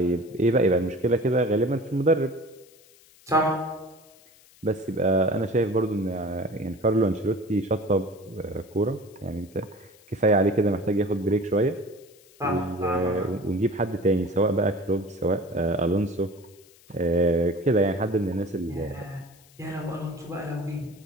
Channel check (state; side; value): noise; left; hiss, 27 dB below the sound